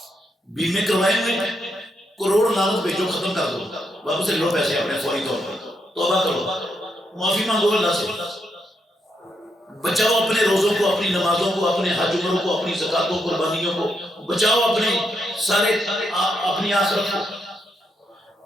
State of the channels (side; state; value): both; normal; correlation 0.79